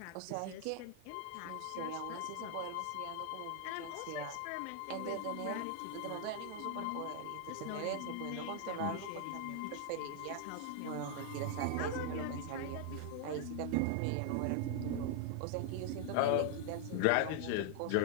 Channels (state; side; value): different; both; correlation 0.00